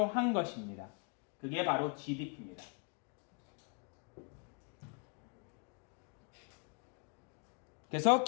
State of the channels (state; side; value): quieter; right; 37.8 dB